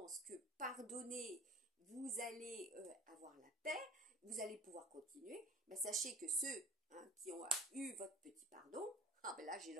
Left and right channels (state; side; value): normal; both; correlation 0.44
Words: que pardonner, vous allez avoir la paix, vous allez pouvoir continuer, ben sachez que ceux hein, qui ont eu votre petit pardon, ah ben là j'ai